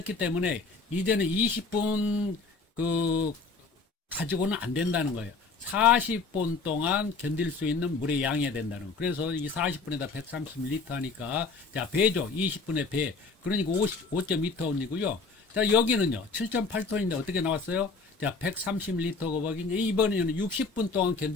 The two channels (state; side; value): quieter; right; 4.3 dB